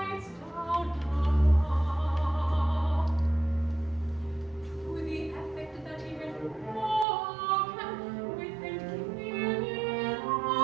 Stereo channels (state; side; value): drops out; left; at 7.1 s